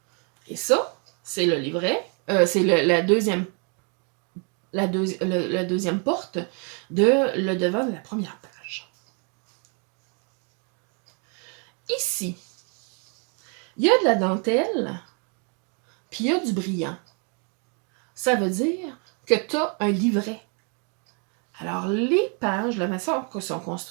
Et ça, c'est le livret. C'est la deuxième porte de le devant de la première page. Ici, il y a de la dentelle, puis il y a du brillant. Ça veut dire que tu as un livret. Alors, les pages, la façon que sont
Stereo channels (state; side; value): quieter; left; 37.7 dB